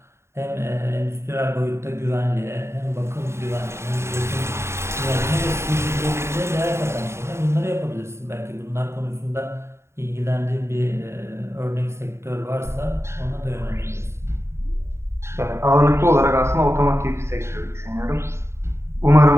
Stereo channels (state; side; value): late; left; 0.13 ms